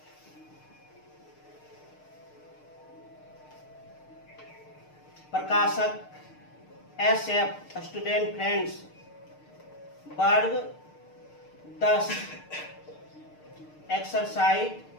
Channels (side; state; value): right; late; 6.6 ms